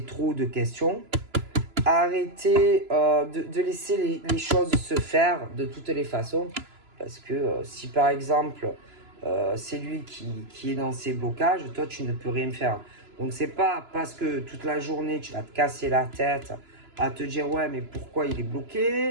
trop de questions, arrêtez de laisser les choses se faire de toutes les façons, parce que si par exemple c'est lui qui est dans ses blocages, toi tu ne peux rien faire. Donc c'est pas parce que toute la journée tu vas te casser la tête à te dire ouais mais pourquoi il est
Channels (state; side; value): late; left; 3.0 ms